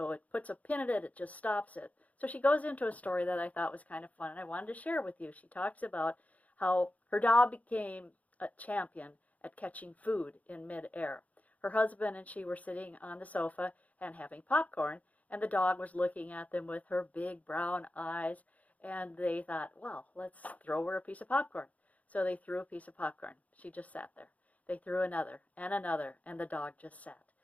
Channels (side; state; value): right; late; 0.071 ms